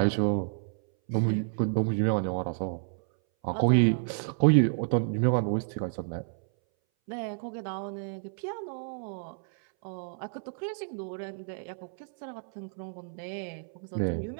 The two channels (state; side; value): silent; left; 58 dB below the other